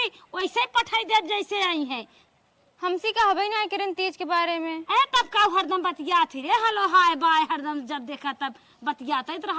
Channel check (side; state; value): both; identical; correlation 1.00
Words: वैसे पठाई दे जैसे आई है। हमसे कहबे ना किरण तीज के बारे में। तब का हरदम बतिया थी रे हलो हाय बाय हरदम जब देखा तब बतियाता